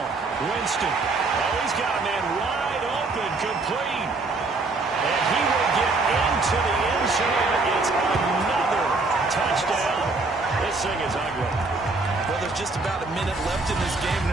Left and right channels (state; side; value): quieter; left; 3.6 dB